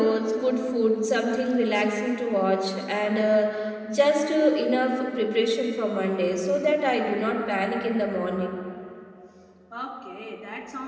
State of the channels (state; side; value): identical; both; correlation 1.00